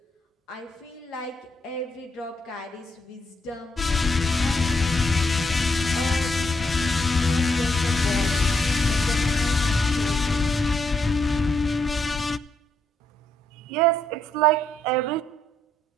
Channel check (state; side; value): normal; both; correlation 0.76